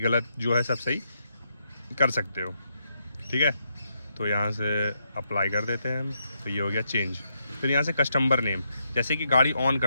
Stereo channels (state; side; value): inverted; both; correlation -0.79